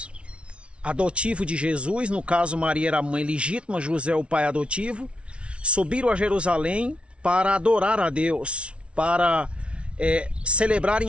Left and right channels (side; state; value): left; late; 0.060 ms